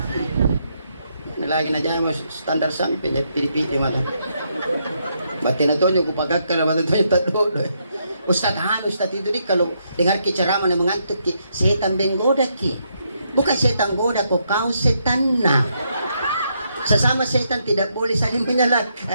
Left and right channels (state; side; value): inverted; both; correlation -0.77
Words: Lagi aja mas standar sampai pilih-pilih mata. Batin itu juga pakai kalau batin itu tak dulu. Ustaz itu di kalau dengar ceramah yang mengantuk ki setan benggoda ki. Bukan setan goda kau setan nak. Sesama setan tidak boleh saling